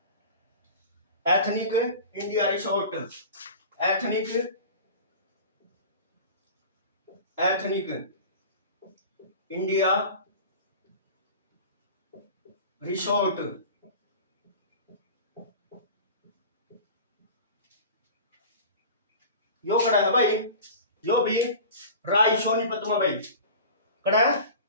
ethnic India resort, ethnic, ethnic India resort. यो कड़ा है भाई, यो भी राय सोनीपत में भाई, कड़ा है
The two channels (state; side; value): inverted; both; correlation -0.36